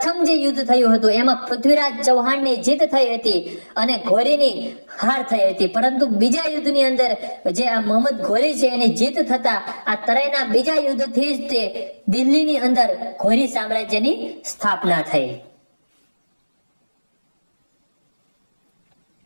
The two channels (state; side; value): inverted; both; correlation -1.00